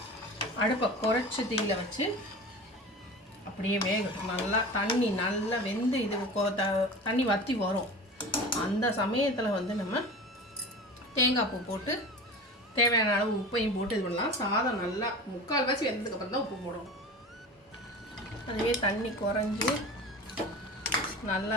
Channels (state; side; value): normal; both; correlation 0.34